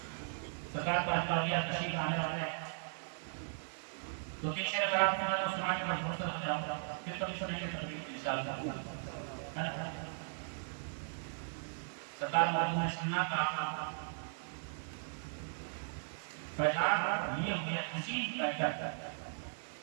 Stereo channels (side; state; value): left; silent; digital silence